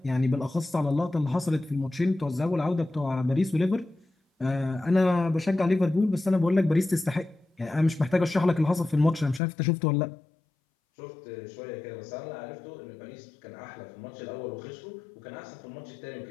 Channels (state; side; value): drops out; right; at 9.4 s